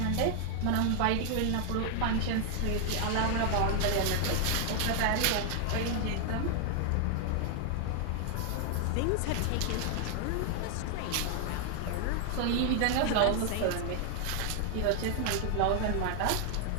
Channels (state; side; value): different; both; correlation 0.00